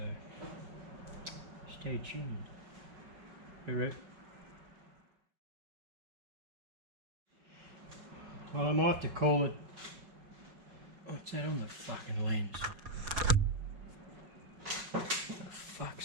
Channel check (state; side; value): late; left; 5.3 ms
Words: stay tuned. Alright. Well, I might have to call it. What's that on the fucking lens? What the